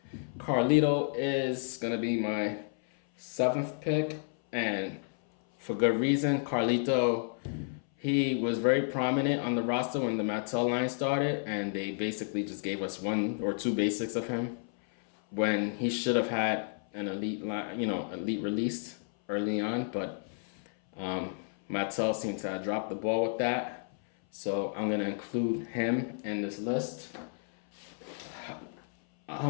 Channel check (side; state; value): right; silent; 57 dB below the other